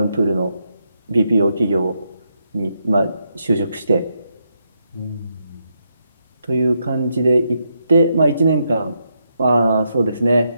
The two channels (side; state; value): both; inverted; correlation -0.81